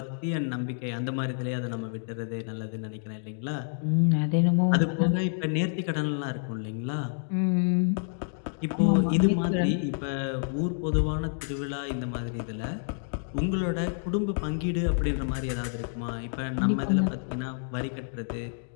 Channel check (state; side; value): silent; right; digital silence